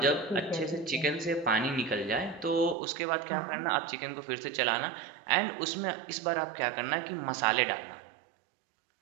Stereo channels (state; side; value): drops out; left; at 2.8 s